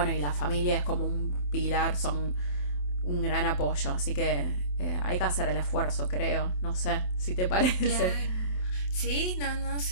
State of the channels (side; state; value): right; late; 27 ms